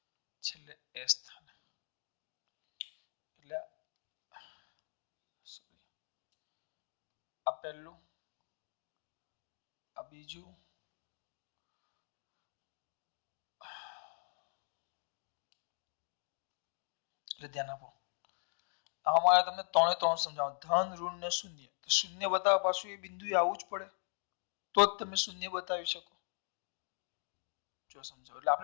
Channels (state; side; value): silent; right; 51 dB below the other